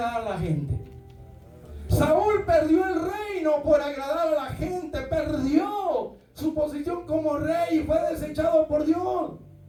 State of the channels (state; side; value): identical; both; correlation 1.00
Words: a la gente? Saúl perdió el reino por agradar a la gente. Perdió su posición como rey y fue desechado por Dios.